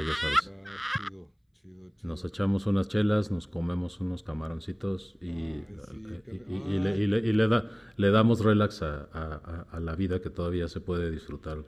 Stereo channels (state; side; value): identical; both; correlation 1.00